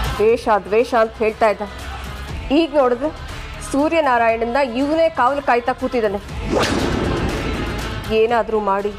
ದ್ವೇಷ ದ್ವೇಷ ಅಂತ ಹೇಳ್ತಾ ಇದ್ದ, ಈಗ ನೋಡಿದ್ರೆ ಸೂರ್ಯನಾರಾಯಣನ ಇವನೇ ಕಾವಲು ಕಾಯ್ತಾ ಕೂತಿದ್ದಾನೆ. ಏನಾದರೂ ಮಾಡಿ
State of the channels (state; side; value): identical; both; correlation 1.00